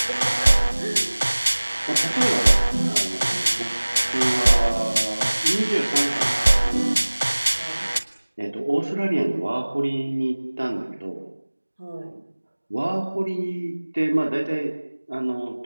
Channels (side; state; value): both; inverted; correlation -1.00